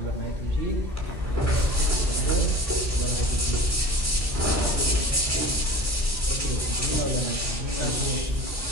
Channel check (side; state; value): both; normal; correlation 0.40